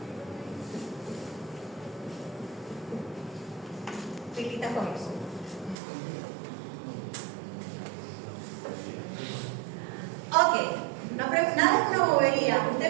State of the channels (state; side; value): drops out; left; at 5.8 s